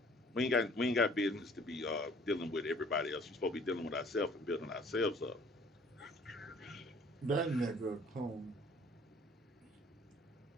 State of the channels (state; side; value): normal; both; correlation 0.55